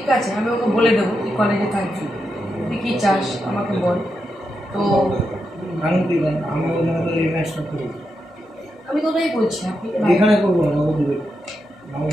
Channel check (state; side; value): normal; both; correlation 0.85